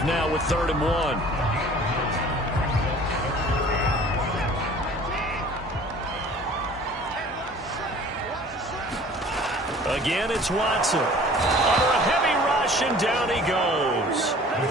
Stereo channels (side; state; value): both; normal; correlation 0.48